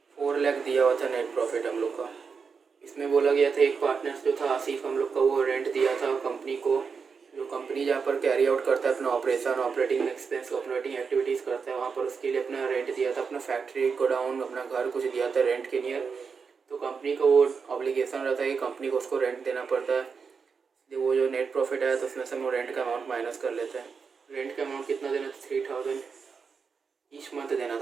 4 लाख दिया हुआ था नेट प्रॉफिट हम लोग का। इसमें बोला गया था एक पार्टनर जो था आसिफ, हम लोग का वो रेंट दिया था कंपनी को। जो कंपनी जहाँ पर कैरी आउट करता है अपना operation, operating expense, operating activities करता है, वहाँ पर उसके लिए अपना रेंट दिया था, अपना फैक्ट्री, गोडाउन, अपना घर कुछ दिया था रेंट के नियर। तो कंपनी का वो ऑब्लिगेशन रहता है कि कंपनी को उसको रेंट देना पड़ता है। वो जो नेट प्रॉफिट आया तो उसमें से हम लोग रेंट का अमाउंट माइनस कर लेते हैं। रेंट का अमाउंट कितना देना था? 3000 ईच मंथ देना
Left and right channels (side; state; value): left; quieter; 5.5 dB